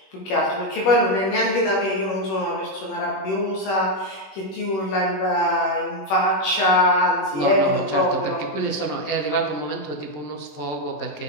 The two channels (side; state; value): right; late; 21 ms